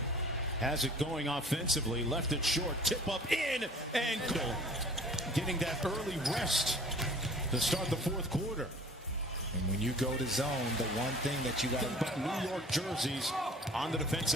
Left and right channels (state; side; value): normal; both; correlation 0.48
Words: has it going offensively. Left it short. Tip up in and goal. Getting that early rest to start the fourth quarter. And when you go to zone, the one thing that you got to... But New York jerseys on the